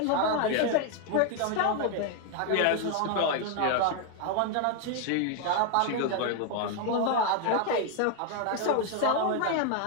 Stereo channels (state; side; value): different; both; correlation 0.01